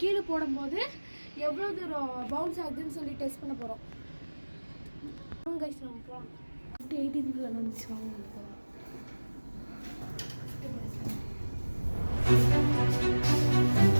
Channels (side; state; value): both; inverted; correlation -1.00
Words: கீழே போடும்போது எவ்வளோ தூரம் பவுன்ஸ் ஆகுதுன்னு சொல்லி டெஸ்ட் பண்ண போகிறோம். கைஸ் நம்ம போகலாம். 18th ஃப்ளோர் வந்துச்சு, வாங்க போகலாம்.